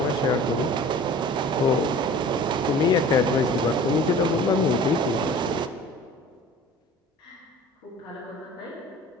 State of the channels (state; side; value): normal; both; correlation 0.44